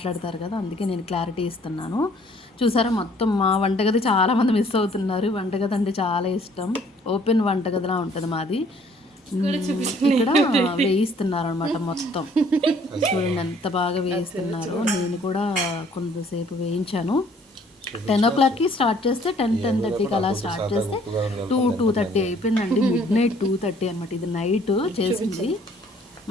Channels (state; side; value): normal; both; correlation 0.59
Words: కదా, అందుకే నేను క్లారిటీ ఇస్తున్నాను. చూసారా, మొత్తం మా వంటగది చాలామంది మిస్ అవుతున్నారు. వంటగది అంటే చాలా ఇష్టం, ఓపెన్ వంటగదిలా ఉంటుంది మాది. ఇక్కడ వేయిస్తున్నారు అనమాట మొత్తం. చూడండి ఎంత బాగా వేయిస్తున్నారు. నేను కూడా కొంతసేపు వేయించాను. 10 o'clockకి స్టార్ట్ చేస్తే 10-10:30కి అలా స్టార్ట్ చేస్తే 2-2:30 అయిపోయిందండి. మిడ్నైట్ 2:30 అనమాట. ఇది నైట్ చేసింది.